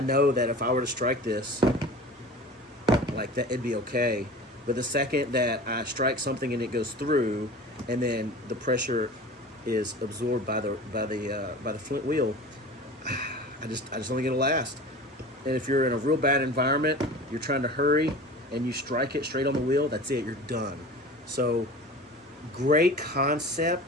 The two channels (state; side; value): normal; both; correlation 0.37